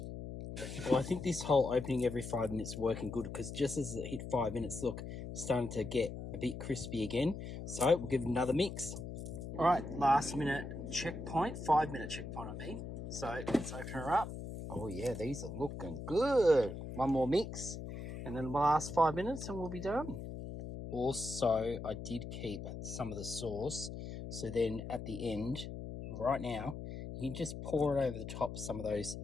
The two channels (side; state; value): left; noise; hum, 8 dB below the sound